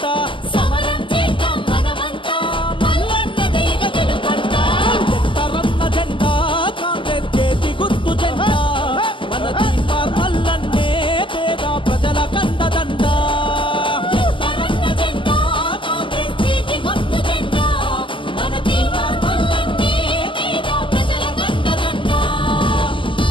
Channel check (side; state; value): right; late; 0.25 ms